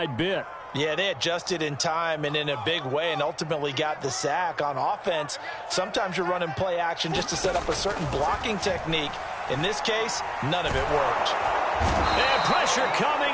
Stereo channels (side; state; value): both; identical; correlation 1.00